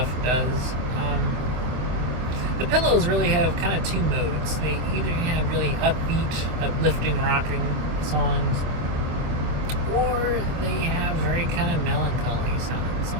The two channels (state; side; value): late; left; 25 ms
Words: does. The Pillows really have kind of two modes. They either have really upbeat, uplifting, rocking songs, or they have very kind of melancholy sounding